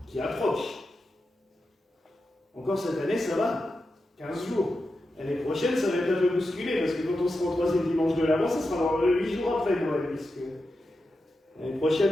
qui approche. Encore cette année, ça va, 15 jours. L'année prochaine, ça va être un peu bousculé, parce que quand on sera au troisième dimanche de l'Avent, ça sera dans 8 jours après Noël, puisque l'année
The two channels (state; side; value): normal; both; correlation 0.89